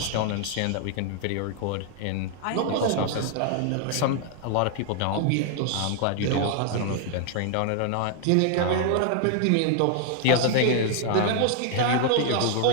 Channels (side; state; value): both; different; correlation 0.00